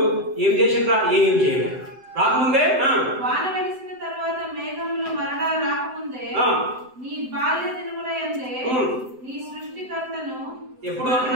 ఏం చేసిండ్రా? ఏం చేయలేదు. రాకముందే వాన వెలిసిన తర్వాత మేఘములు మరలా రాకముందే నీ బాల్య దినములయందే నీ సృష్టికర్తను ఎప్పుడు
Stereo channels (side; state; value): left; late; 7.8 ms